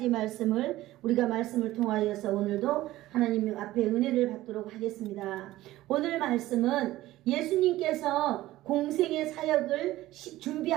말씀을 우리가 말씀을 통하여서 오늘도 하나님 앞에 은혜를 받도록 하겠습니다. 오늘 말씀은 예수님께서 공생의 사역을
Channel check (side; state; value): left; quieter; 16.2 dB